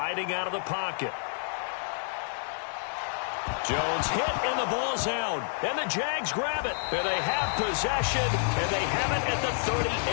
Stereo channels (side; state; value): right; silent; 59 dB below the other